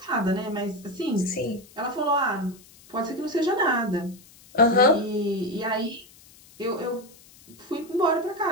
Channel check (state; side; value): noise; left; hiss, 24 dB below the sound